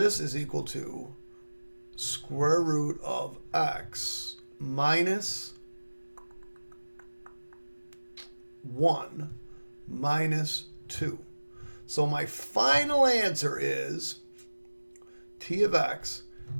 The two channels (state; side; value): inverted; both; correlation -1.00